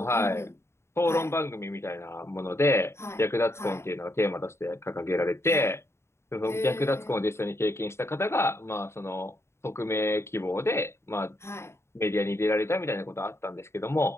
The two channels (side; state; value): right; late; 0.13 ms